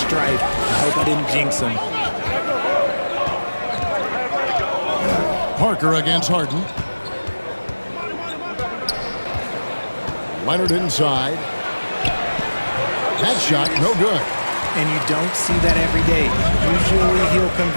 I hope I didn't jinx him. Parker against Harden. Leonard inside. That shot, no good. And you don't see that every day. Usually he'll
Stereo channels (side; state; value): both; inverted; correlation -1.00